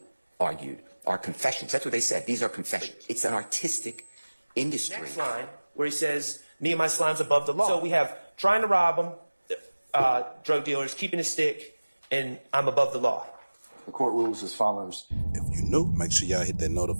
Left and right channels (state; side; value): inverted; both; correlation -1.00